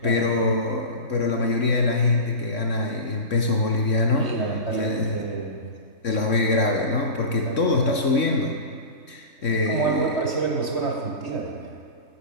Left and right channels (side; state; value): right; late; 3.6 ms